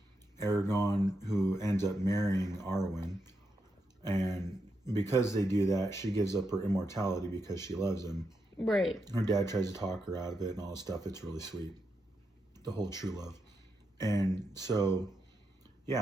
Aragorn, who ends up marrying Arwen. And because they do that, she gives up her immortality because she loves him. Right. Her dad tries to talk her out of it and all this stuff. It's really sweet. The whole true love. And so,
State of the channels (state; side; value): normal; both; correlation 0.84